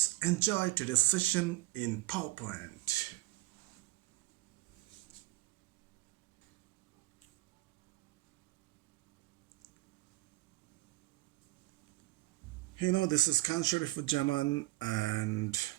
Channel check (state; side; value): quieter; left; 19.0 dB